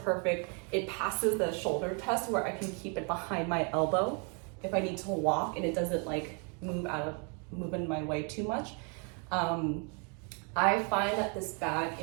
It passes the shoulder test where I can keep it behind my elbow if I need to walk, and it doesn't like move in my way too much. I find that this bag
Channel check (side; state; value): left; quieter; 36.8 dB